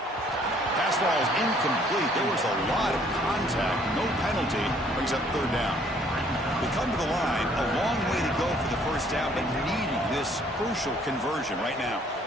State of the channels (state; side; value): normal; both; correlation 0.61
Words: Pass ball is incomplete. There was a lot of contact. No penalty. Brings up 3rd down. They come to the line. A long way to go for the first down, but needing this crucial conversion right now.